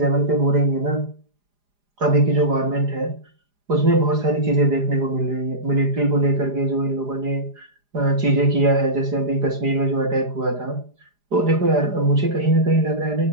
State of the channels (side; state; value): left; late; 4.9 ms